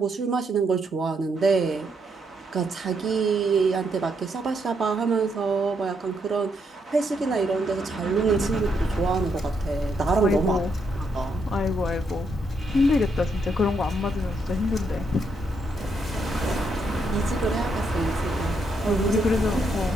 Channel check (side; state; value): both; normal; correlation 0.77